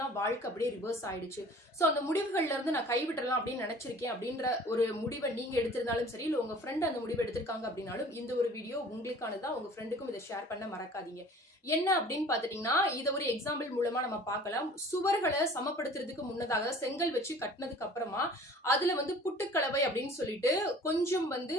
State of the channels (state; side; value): normal; both; correlation 0.48